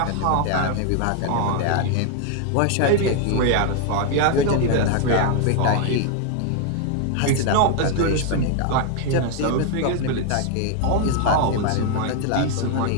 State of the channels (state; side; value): different; both; correlation 0.01